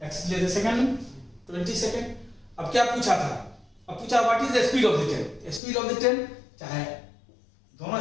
x लिए थे सेकेंड में 20 सेकेंड। अब क्या पूछा था? अब पूछा what is the speed of the train. Speed of the train, चाहे दोनों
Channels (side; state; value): right; drops out; at 5.6 s